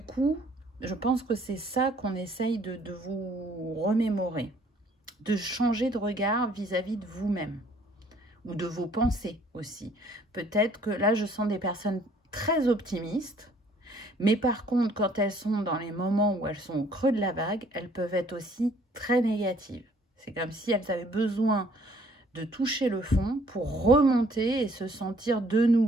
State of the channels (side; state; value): both; normal; correlation 0.60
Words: je pense que c'est ça qu'on essaye de vous remémorer, de changer de regard vis-à-vis de vous-même ou de vos pensées aussi. Peut-être que là, je sens des personnes très optimistes, mais par contre, quand elles sont dans les moments où elles sont au creux de la vague, elles peuvent être aussi très négatives. C'est comme si elles avaient besoin de toucher le fond pour remonter et se sentir de